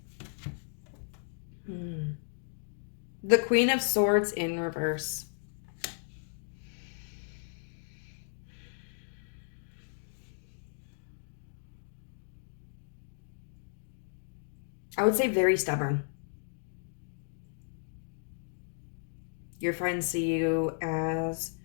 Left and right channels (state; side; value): silent; right; digital silence